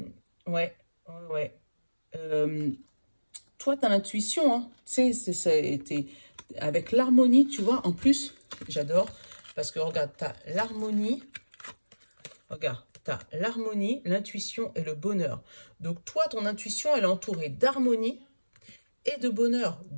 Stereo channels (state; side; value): inverted; both; correlation -1.00